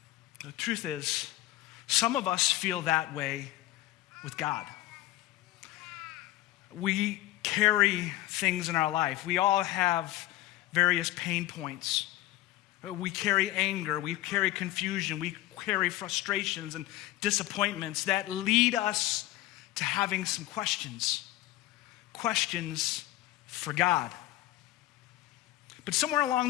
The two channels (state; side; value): quieter; right; 15.9 dB